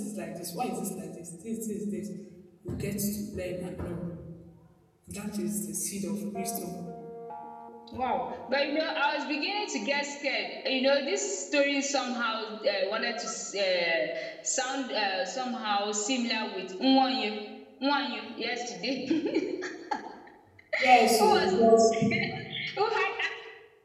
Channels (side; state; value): both; identical; correlation 1.00